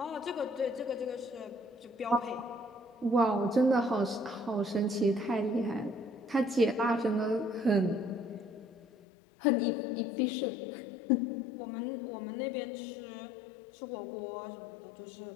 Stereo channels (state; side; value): drops out; right; at 8.8 s